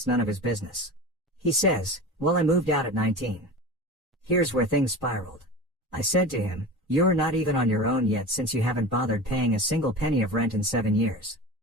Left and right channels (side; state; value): both; normal; correlation 0.31